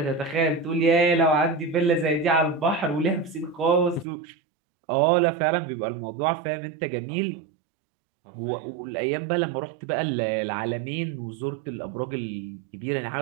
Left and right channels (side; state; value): left; drops out; at 4.0 s